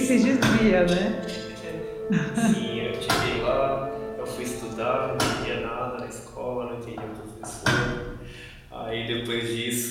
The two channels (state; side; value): identical; both; correlation 1.00